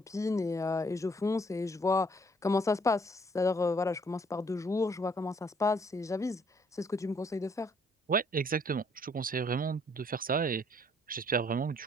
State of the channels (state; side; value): normal; both; correlation 0.64